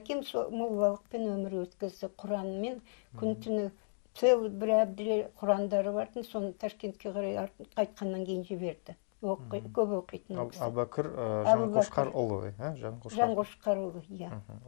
моллалықпен өмір өткізді. Құранмен күн-түні целый бір әбділер Құрандары бардың, соны Ташкентке қарай қайтқаннан кейін жіберді. Көп оқитын ол кісі. Әбубәкір Жаңғошқарұлы, Жаңғошқарұлы, иә.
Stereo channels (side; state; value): right; silent; digital silence